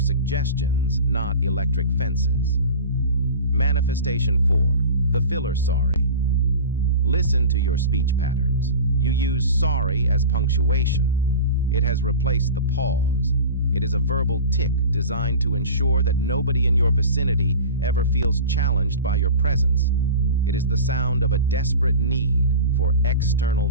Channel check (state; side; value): inverted; both; correlation -0.34